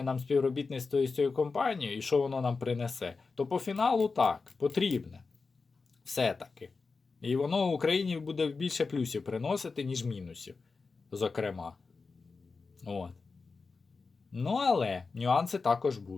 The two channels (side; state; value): right; quieter; 4.4 dB